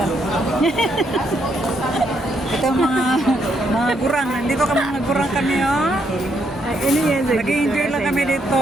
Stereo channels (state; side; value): normal; both; correlation 0.75